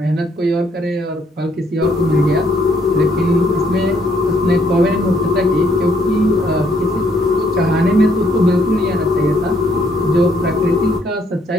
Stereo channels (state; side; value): normal; both; correlation 0.69